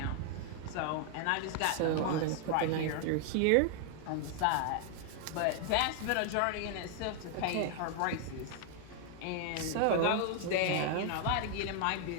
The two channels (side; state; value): both; different; correlation 0.00